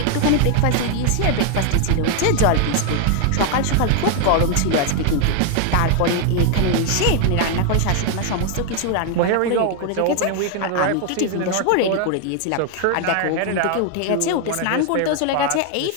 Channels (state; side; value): different; both; correlation 0.00